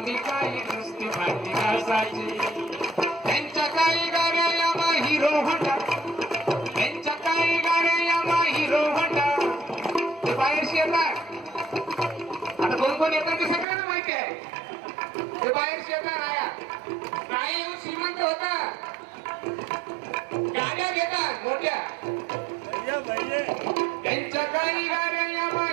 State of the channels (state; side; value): drops out; left; at 13.7 s